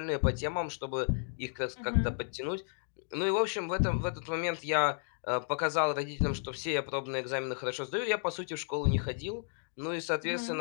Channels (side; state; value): right; silent; 56 dB below the other